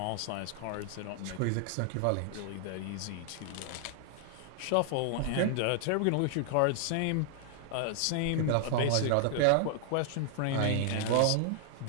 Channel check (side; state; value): both; different; correlation 0.00